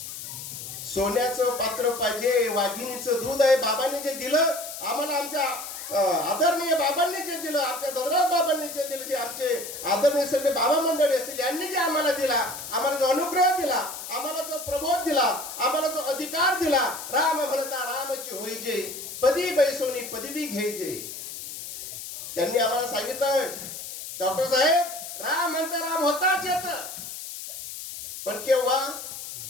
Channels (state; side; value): noise; left; hiss, 9 dB below the sound